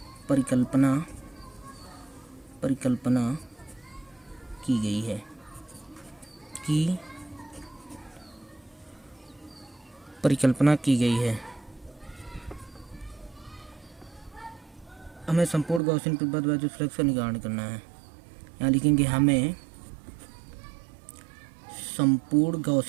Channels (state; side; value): drops out; left; at 15.8 s